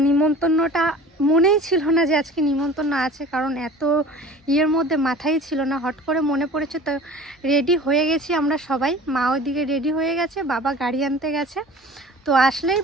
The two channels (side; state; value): both; normal; correlation 0.43